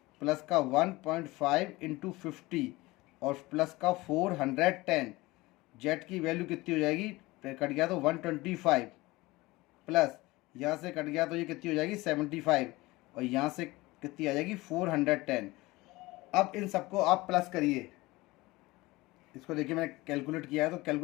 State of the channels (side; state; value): right; quieter; 20.7 dB